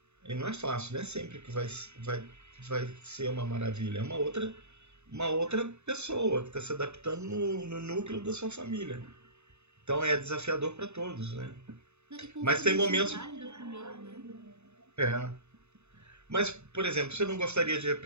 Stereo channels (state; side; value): late; left; 0.81 ms